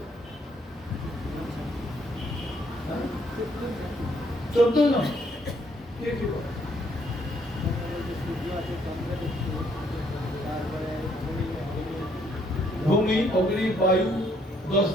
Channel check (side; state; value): both; normal; correlation 0.68